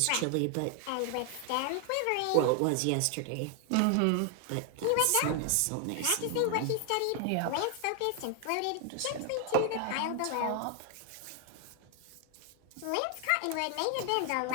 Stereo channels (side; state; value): both; different; correlation 0.00